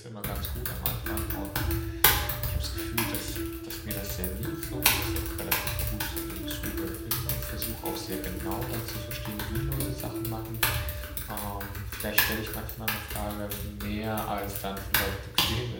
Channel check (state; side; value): identical; both; correlation 1.00